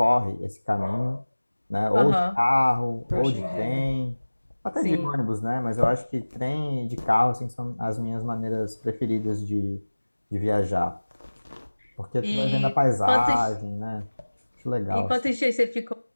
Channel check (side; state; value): both; inverted; correlation -1.00